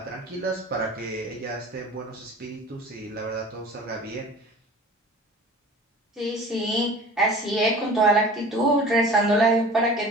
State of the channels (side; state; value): both; normal; correlation 0.42